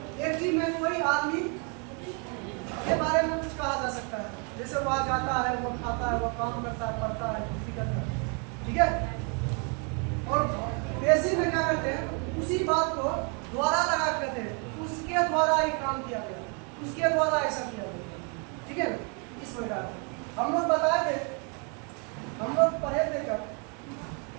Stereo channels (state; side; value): quieter; left; 36.7 dB